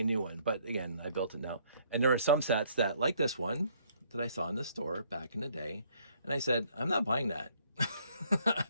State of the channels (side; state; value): both; inverted; correlation -0.64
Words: new one. But again, I built it now. And there are some sets that, like this one, that I saw in the store back in the day. And I said, I'm not buying that.